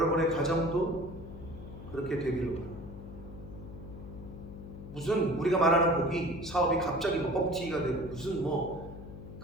가정도 그렇게 되기를 바랍니다. 무슨 우리가 말하는 복이 사업이 갑자기 뭐 뻥튀기가 되고 무슨 뭐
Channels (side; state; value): left; noise; hum, 12 dB below the sound